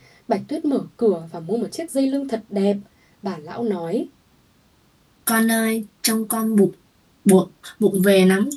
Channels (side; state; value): both; identical; correlation 1.00